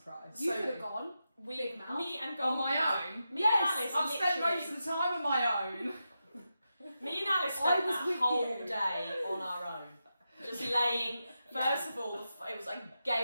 You So- could have gone. Big mouth. Me and On Goldie. my own? Me Yes, and Alice I've spent literally- most of the time on my own. Me and Alice I spent was that with whole you. day on our own. Just laying, first of all, it was like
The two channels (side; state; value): both; inverted; correlation -0.88